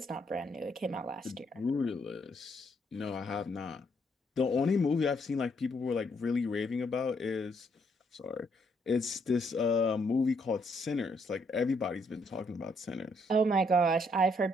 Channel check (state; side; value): normal; both; correlation 0.72